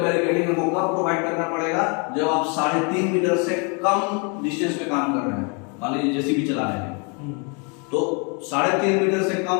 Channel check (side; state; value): right; quieter; 34.5 dB